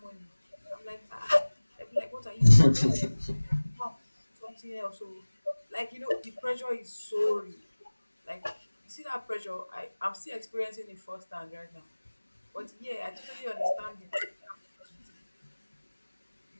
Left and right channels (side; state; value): both; inverted; correlation -1.00